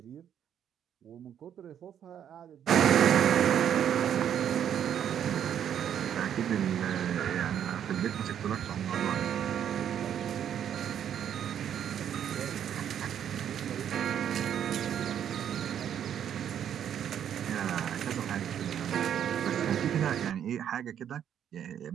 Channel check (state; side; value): quieter; left; 9.4 dB